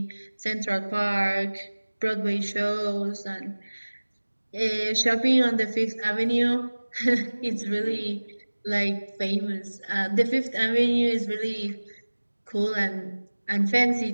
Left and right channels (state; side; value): inverted; both; correlation -1.00